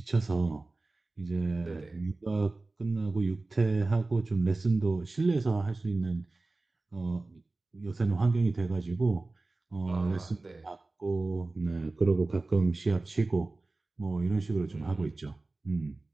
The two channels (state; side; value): quieter; left; 3.2 dB